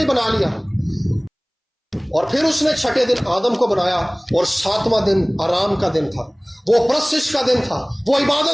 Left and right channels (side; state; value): both; identical; correlation 1.00